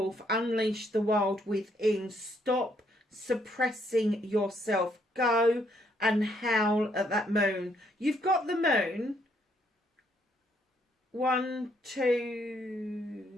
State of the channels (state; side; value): normal; both; correlation 0.71